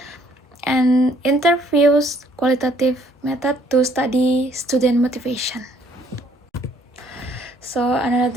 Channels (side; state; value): both; normal; correlation 0.63